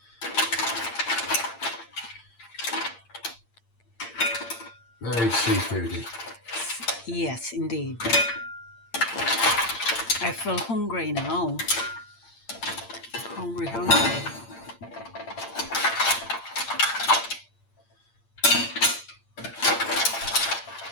Very seafoody. Yes, indeed. I feel hungry now. Hungry, hungry.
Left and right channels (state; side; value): late; right; 8.7 ms